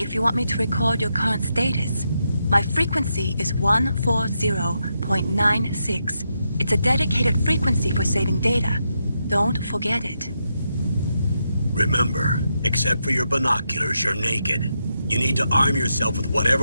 if you want me to record your current status. My frequency is 140.96. It's a dedicated frequency for saving data. Don't forget it. Remember, except for your binoculars, you're naked. You need to arm yourself with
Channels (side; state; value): both; inverted; correlation -0.83